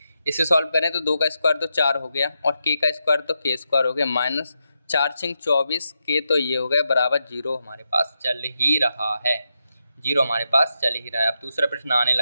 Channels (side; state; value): both; inverted; correlation -0.86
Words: इसे सॉल्व करें तो 2 का स्क्वायर तो 4 हो गया और के का स्क्वायर तो k² हो गया, -4 × 24 के तो ये हो गया बराबर 0 हमारे पास चल ही रहा है। 0 हमारे पास चल ही रहा है। अब दूसरा प्रश्न आने